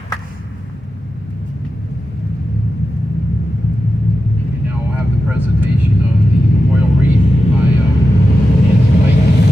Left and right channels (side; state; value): both; normal; correlation 0.91